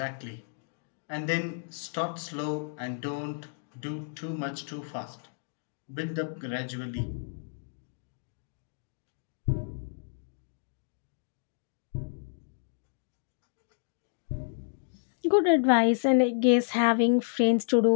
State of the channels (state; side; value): silent; right; digital silence